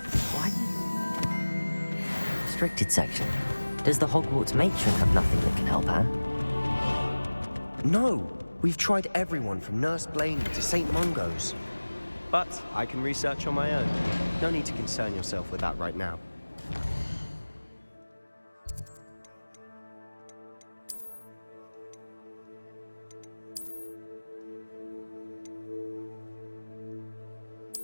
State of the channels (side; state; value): both; inverted; correlation -1.00